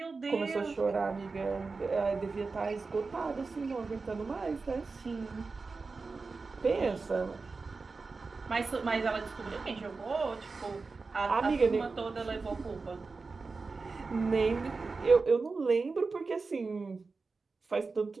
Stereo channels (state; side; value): quieter; left; 4.2 dB